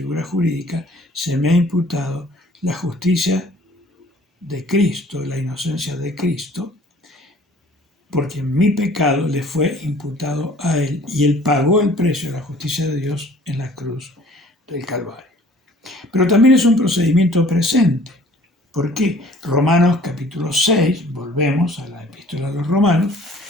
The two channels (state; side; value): normal; both; correlation 0.52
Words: jurídica, se me ha imputado la justicia de Cristo, la inocencia de Cristo, porque mi pecado le fue imputado a Él y Él pagó el precio de la justicia de Dios en la cruz del Calvario. Pero también es un procedimiento presente. ¿Por qué? Romanos capítulo 6, volvemos a la epístola de los Romanos,